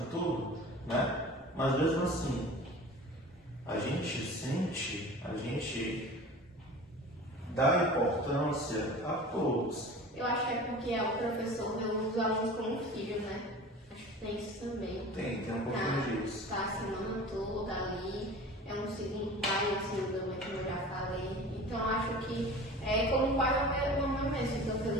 tudo, né? Mas mesmo assim, a gente sente, a gente dá importância a todos. Eu acho que é porque o professor vê os alunos como filho, né? Acho que tem isso também. Tem um pouquinho disso. Tá a semana toda ali, é um segundo pai, um segundo mãe, como eu já falei. Então acho que é como um pai ou uma mãe mesmo, fica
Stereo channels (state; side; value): normal; both; correlation 0.39